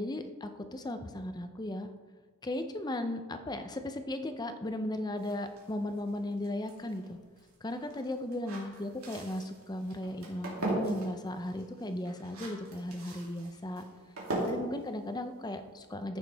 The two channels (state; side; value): normal; both; correlation 0.65